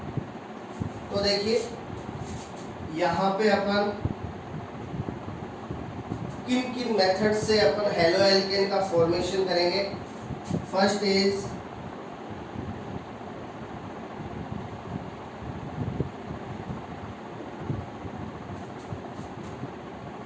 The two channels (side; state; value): both; identical; correlation 1.00